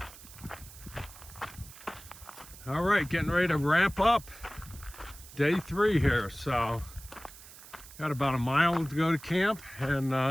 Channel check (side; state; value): right; noise; hiss, 18 dB below the sound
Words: All right, getting ready to wrap up day 3 here. So got about a mile to go to camp,